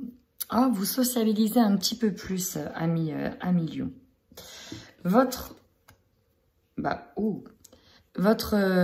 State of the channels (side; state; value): both; identical; correlation 1.00